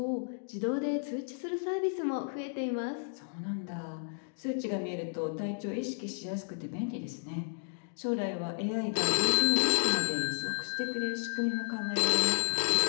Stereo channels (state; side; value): silent; right; digital silence